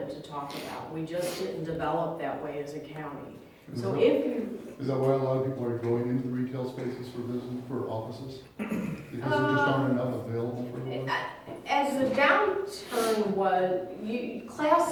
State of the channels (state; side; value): identical; both; correlation 1.00